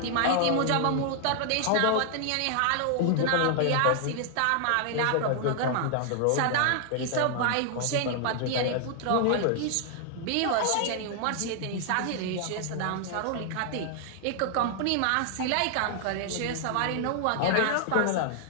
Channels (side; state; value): both; different; correlation 0.00